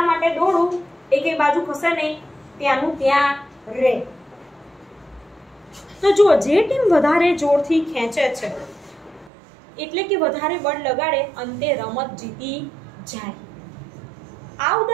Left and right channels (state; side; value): drops out; left; at 9.3 s